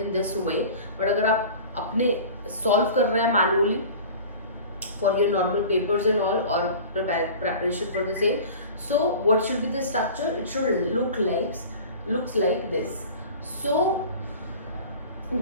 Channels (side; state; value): both; inverted; correlation -0.40